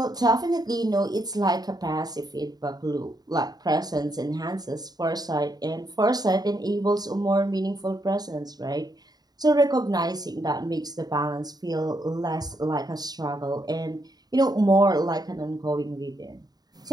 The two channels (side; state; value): left; late; 0.19 ms